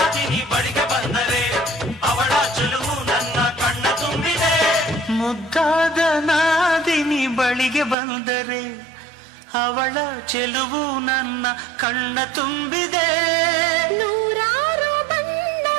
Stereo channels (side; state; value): left; drops out; at 8.0 s